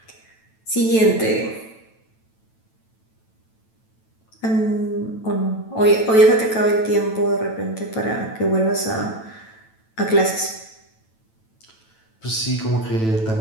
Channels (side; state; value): right; late; 9.1 ms